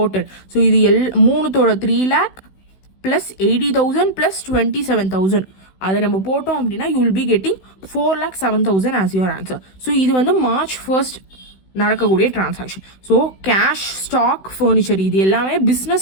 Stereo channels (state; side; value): late; right; 16 ms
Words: ஸோ இது 3தோட 3 lakh ப்ளஸ் 80,000 ப்ளஸ் 27,000 அதை நம்ம போட்டோம் அப்படின்னா you will be getting 4,07,000 as your answer. So இது வந்து மார்ச் 1 நடக்கக்கூடிய transaction. So cash, stock, furniture இது எல்லாமே